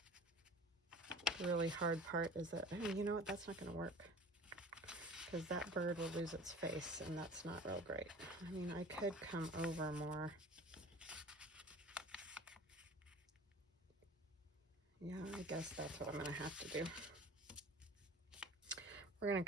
The really hard part is that, oh, you know what, that's not gonna work, because that bird will lose its face, and that's not real great. I mean, I could come over more. Yeah, I guess that's what I'm gonna have to do. We're gonna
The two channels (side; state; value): both; normal; correlation 0.42